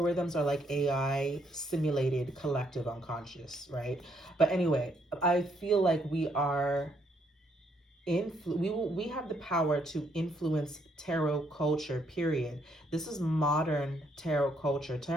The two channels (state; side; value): normal; both; correlation 0.72